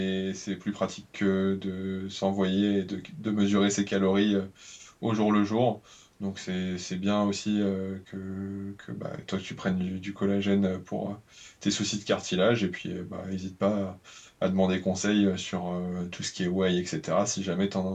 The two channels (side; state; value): both; identical; correlation 1.00